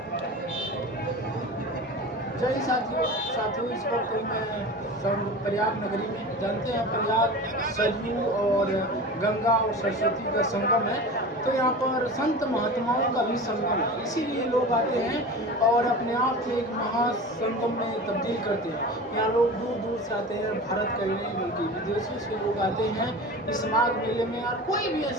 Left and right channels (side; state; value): both; normal; correlation 0.33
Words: जय साथियों इस वक्त मैं प्रयाग नगरी में, जानते हैं प्रयाग सरयू और गंगा और सरस्वती का संगम है। तो यहाँ पर संत महात्माओं का भी संगम है, इसीलिए लोग आते हैं और अपने आप को एक महासंगम में तब्दील करते हैं। यहाँ लोग दूर दूर से आते हैं, भारत का ही नहीं बल्कि विदेशों से लोग आते हैं इस माघ मेले में। और कोई भी